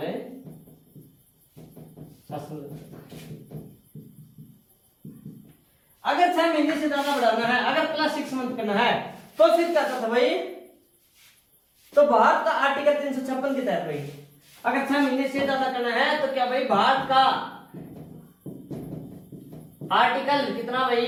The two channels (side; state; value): both; identical; correlation 1.00